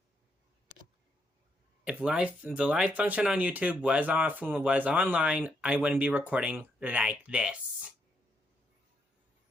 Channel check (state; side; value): normal; both; correlation 0.77